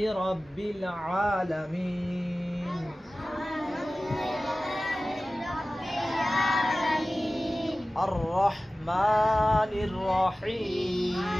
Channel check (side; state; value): both; normal; correlation 0.96